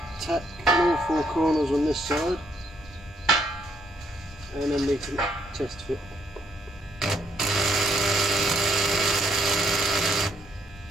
tack all four corners on this side, and then we can test fit.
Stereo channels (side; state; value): both; normal; correlation 0.71